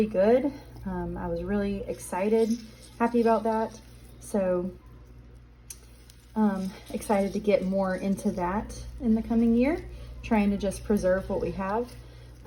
good. I was really excited, happy about that. So excited to get more into that in the coming year, trying to just preserve what we have.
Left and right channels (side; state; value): both; identical; correlation 1.00